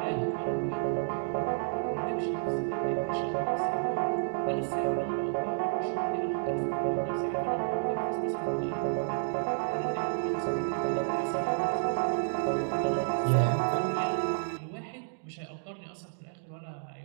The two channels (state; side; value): silent; left; digital silence